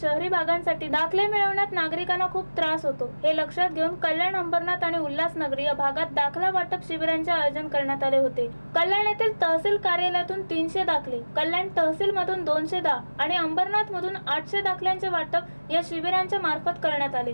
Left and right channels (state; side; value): inverted; both; correlation -1.00